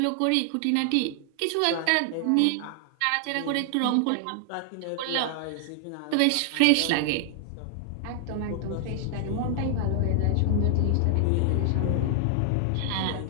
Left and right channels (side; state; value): both; different; correlation 0.00